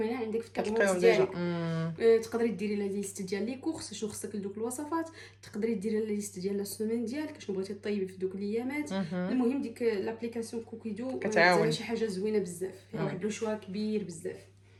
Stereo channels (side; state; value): both; identical; correlation 1.00